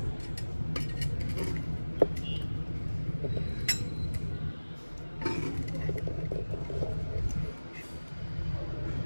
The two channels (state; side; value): inverted; both; correlation -1.00